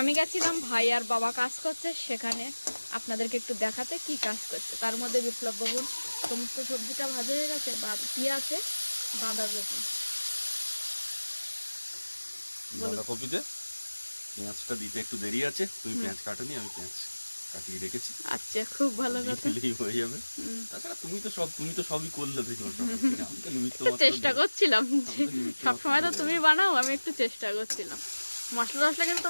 গেছিলাম ভাই আর বাবা কাজ করছে সেখানে আপনাদেরকে একটু দেখাতে কি কাজ করছে। তার মধ্যে বিপ্লব বাবুর সমস্ত সবজিটা ভাজা হয়ে গেছে, কি আছে বাঁধাকপি। বাঁধাকপিতে পেঁয়াজটা দিতে একটু দেরি আছে, তুমি পেঁয়াজ কাটোনি, আমি পেঁয়াজ কাটিয়ে রেখেছি। আচ্ছা, খুব ভালো কথা। দিলেই হয়ে যাবে। তাছাড়া তুমি তো সবই করলে দেখো, আমি তো নিমিত্ত তো মাত্র চেষ্টা দিলাম। করছিলাম যে আমি তো নিমিত্ত সবসময় তো মাত্র তুমি বানাও, আমি একটু চেষ্টা করছিলাম। মশলা টশলা কিন্তু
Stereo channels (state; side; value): inverted; both; correlation -1.00